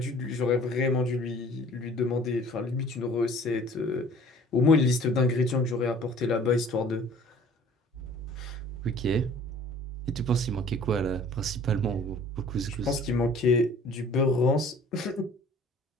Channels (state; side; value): normal; both; correlation 0.50